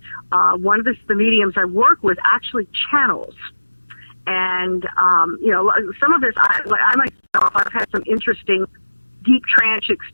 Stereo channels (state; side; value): inverted; both; correlation -1.00